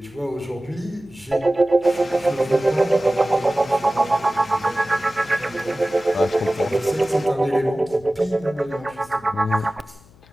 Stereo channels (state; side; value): noise; left; hum, 27 dB below the sound